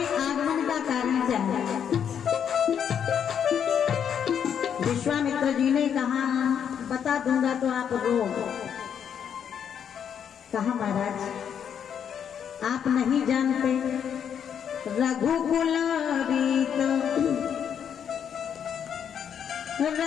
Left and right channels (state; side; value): quieter; right; 8.3 dB